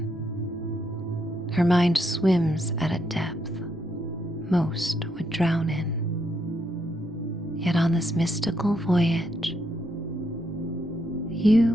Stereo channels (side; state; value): both; normal; correlation 0.77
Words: Her mind swims at a depth most would drown in. Yet on this mystical voyage,